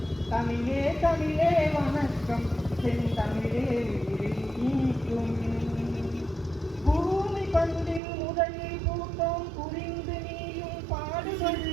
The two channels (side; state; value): left; drops out; at 8.0 s